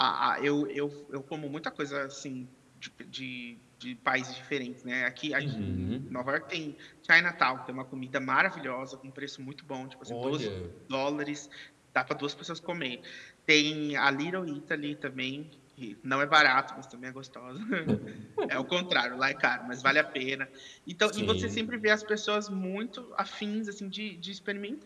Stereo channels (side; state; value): both; identical; correlation 1.00